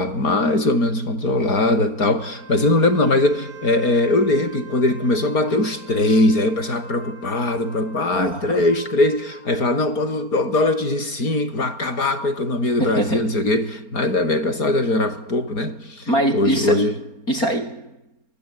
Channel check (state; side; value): late; right; 4.4 ms